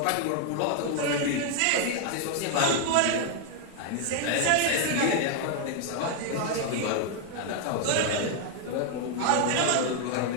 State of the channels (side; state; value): both; different; correlation 0.00